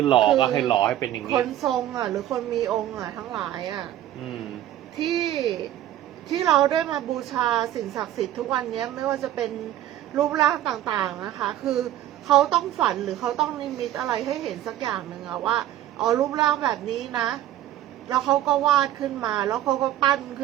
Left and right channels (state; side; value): quieter; left; 12.7 dB